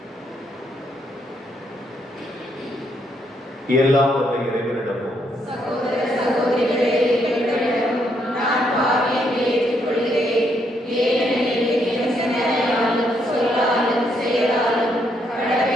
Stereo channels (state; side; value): normal; both; correlation 0.74